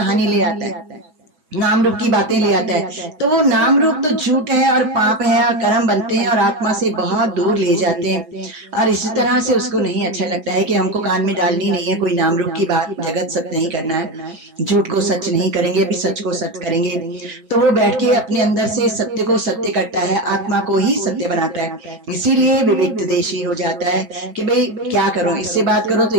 ले आता है, नाम रूप की बातें ले आता है। तो वो नाम रूप तो झूठ है और पाप है और कर्म बनते हैं और आत्मा से बहुत दूर ले जाते हैं। और इसी तरह से उसको नहीं अच्छा लगता है कि हमको कान में डालनी नहीं है कोई नाम रूप की बात, जगत सत्य नहीं करना है, झूठ को सच नहीं करेंगे, अभी सच को सत्य करेंगे। तो वो बैठ के अपने अंदर से सत्य को सत्य करता है, आत्मा को ही सत्य बनाता है। इसीलिए विविक्त देशी हो जाता है कि भाई क्या करो, इससे बात करो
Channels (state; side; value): late; left; 6.6 ms